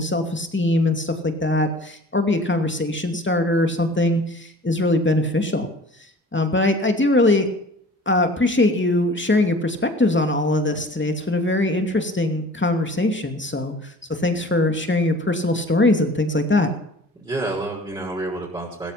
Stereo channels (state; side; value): normal; both; correlation 0.46